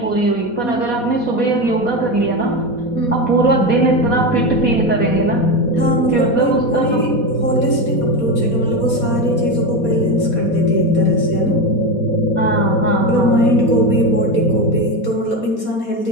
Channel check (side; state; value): right; late; 4.2 ms